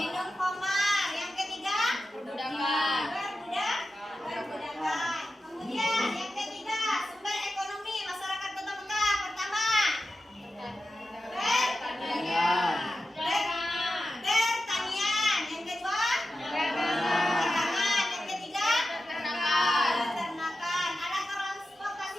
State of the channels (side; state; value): both; normal; correlation 0.92